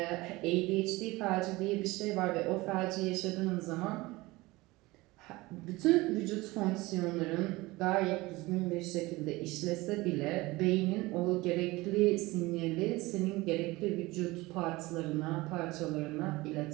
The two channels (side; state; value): left; quieter; 21.0 dB